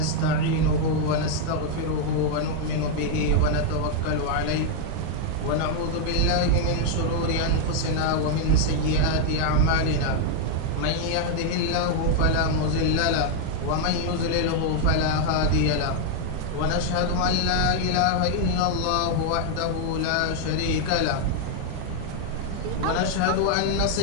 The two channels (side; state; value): both; different; correlation 0.00